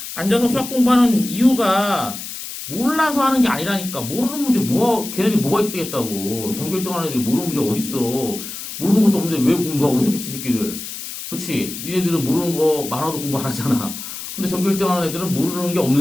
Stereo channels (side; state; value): left; noise; hiss, 9 dB below the sound